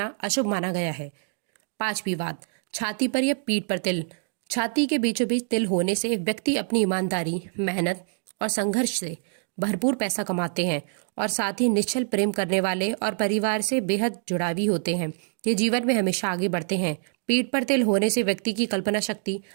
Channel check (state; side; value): silent; left; 61 dB below the other